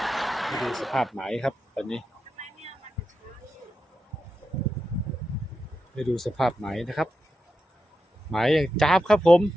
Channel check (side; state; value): both; normal; correlation 0.88